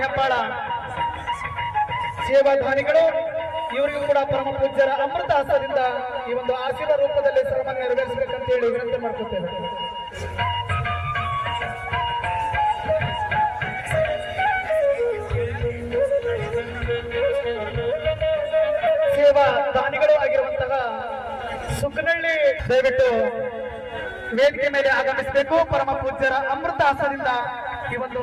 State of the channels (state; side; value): identical; both; correlation 1.00